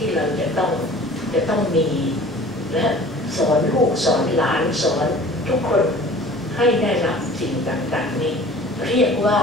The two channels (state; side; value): normal; both; correlation 0.46